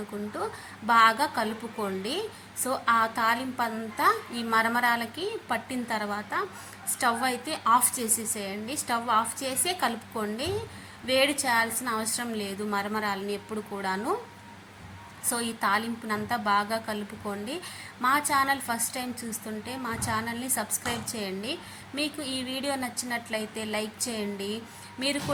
బాగా కలుపుకోండి. సో ఆ తాలింపు అంతా ఈ మరమరాలకి పట్టిన తర్వాత స్టవ్ అయితే ఆఫ్ చేసేసేయండి. స్టవ్ ఆఫ్ చేసే కలుపుకోండి. వేడి చేయాల్సిన అవసరం లేదు మరమరాలని ఎప్పుడు కూడాను. సో ఈ తాలింపునంతా బాగా కలుపుకోండి. మా ఛానల్ ఫస్ట్ టైం చూస్తుంటే మా ఛానల్ని సబ్స్క్రైబ్ చేయండి. మీకు ఈ వీడియో నచ్చినట్లయితే లైక్ చేయండి. మీరు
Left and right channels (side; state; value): both; identical; correlation 1.00